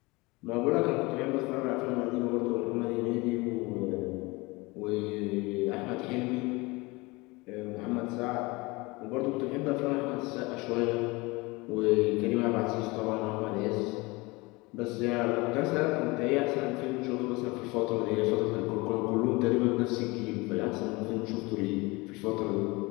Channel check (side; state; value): right; quieter; 24.1 dB